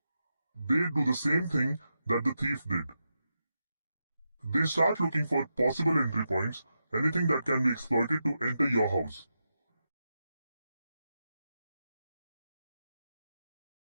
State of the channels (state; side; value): inverted; both; correlation -0.88